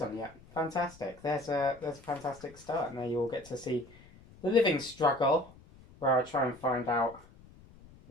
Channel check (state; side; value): noise; left; rumble, 23 dB below the sound